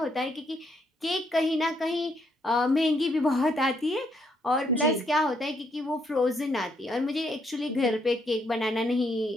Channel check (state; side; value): normal; both; correlation 0.73